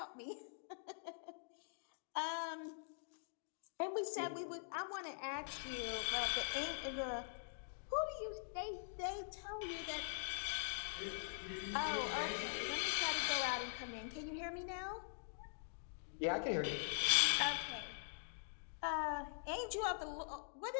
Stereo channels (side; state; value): right; silent; digital silence